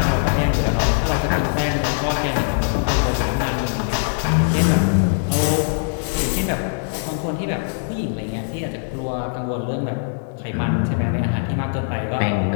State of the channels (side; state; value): right; silent; digital silence